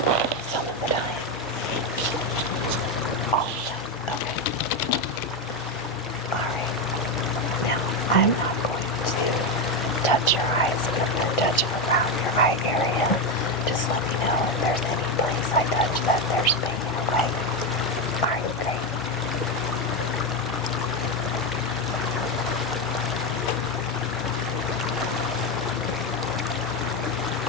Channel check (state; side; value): normal; both; correlation 0.11